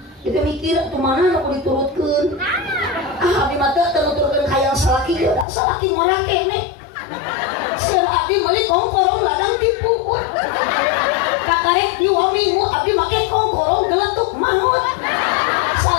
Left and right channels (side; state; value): right; drops out; at 5.5 s